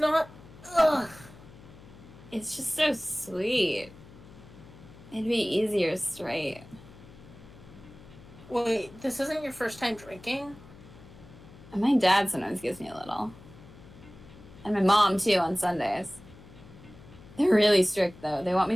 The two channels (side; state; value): left; noise; hum, 20 dB below the sound